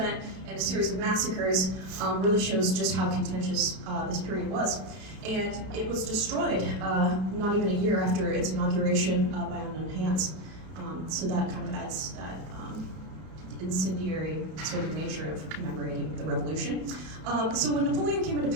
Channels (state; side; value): late; left; 31 ms